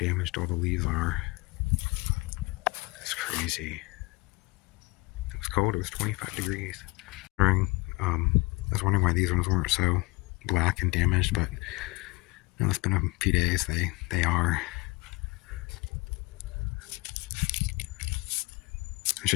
all the leaves are. It's crazy. It was cold. It was 25 degrees. I was wondering why these ones weren't so black and damaged, but you know, it's been a few days. They are. I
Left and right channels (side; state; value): right; quieter; 23.9 dB